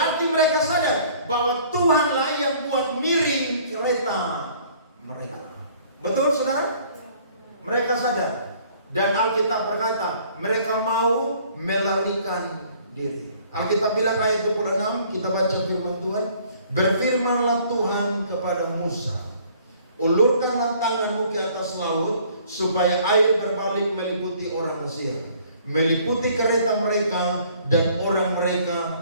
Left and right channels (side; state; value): both; inverted; correlation -0.57